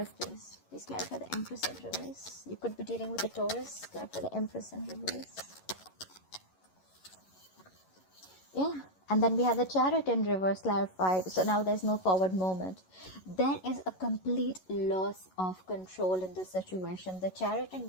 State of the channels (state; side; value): late; right; 11 ms